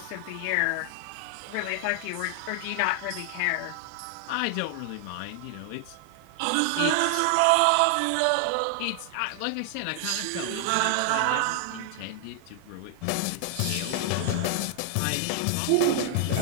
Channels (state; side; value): different; both; correlation 0.00